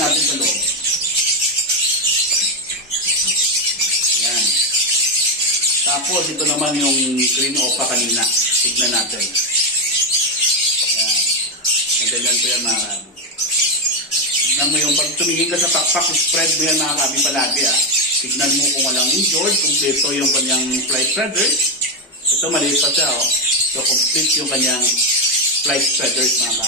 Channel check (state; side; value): normal; both; correlation 0.07